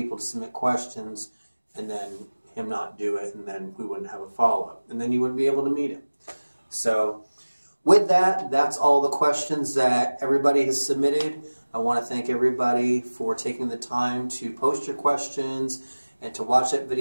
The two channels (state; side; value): inverted; both; correlation -1.00